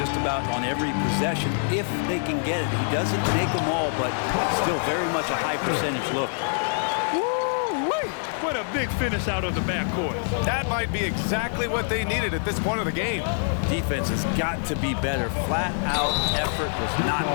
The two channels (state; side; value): silent; right; 62 dB below the other